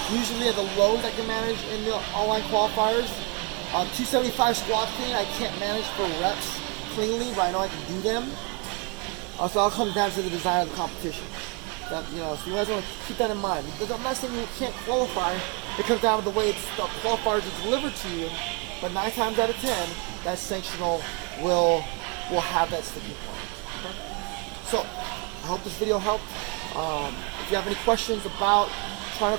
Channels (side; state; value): left; quieter; 32.0 dB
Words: Usually at the lows I can manage in the online qualifiers. 275 squat clean I can't manage for reps cleanly, but I know I can do them. So I'll come down to the design of the competition. So you guys want to keep that in mind. I'm not saying you can't qualify. It comes down to the way the qualifiers are delivered to you. But 9 times out of 10, that sanctional will have that sticking point. Okay? So I hope this video helped. If you have any questions about trying